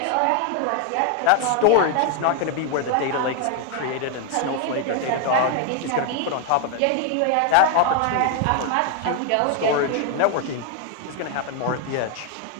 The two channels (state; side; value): different; both; correlation 0.01